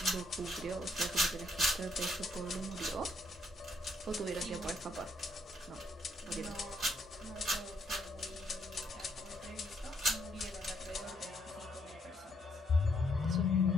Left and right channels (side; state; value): both; normal; correlation 0.72